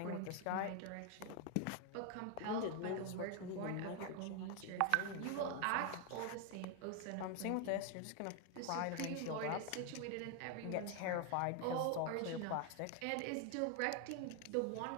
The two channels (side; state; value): both; different; correlation 0.01